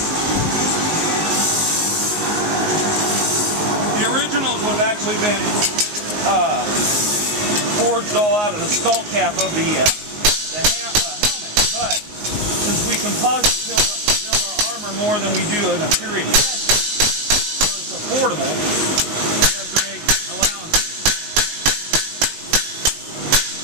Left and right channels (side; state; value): left; late; 19 ms